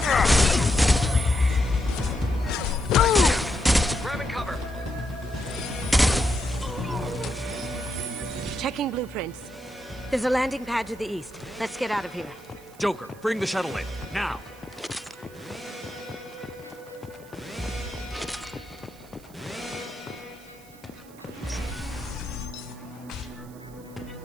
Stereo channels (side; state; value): right; noise; hiss, 24 dB below the sound